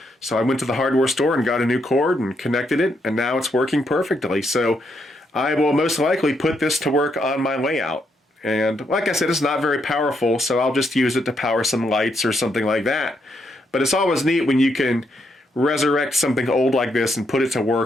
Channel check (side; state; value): both; normal; correlation 0.78